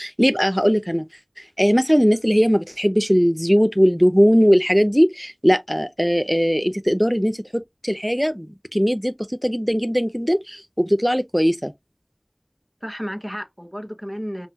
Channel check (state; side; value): identical; both; correlation 1.00